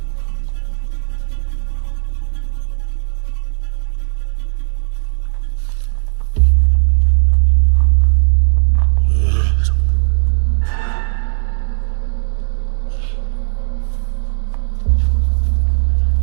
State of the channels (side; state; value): left; silent; digital silence